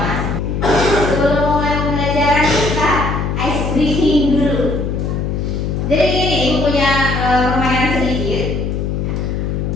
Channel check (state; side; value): noise; left; hum, 1 dB below the sound